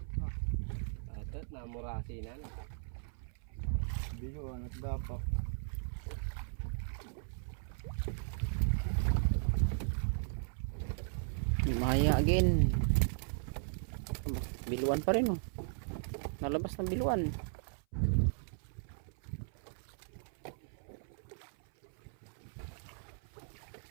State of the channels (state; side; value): silent; left; 53 dB below the other